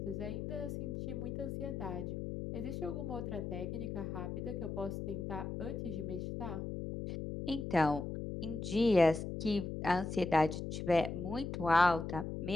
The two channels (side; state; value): left; noise; hum, 5 dB below the sound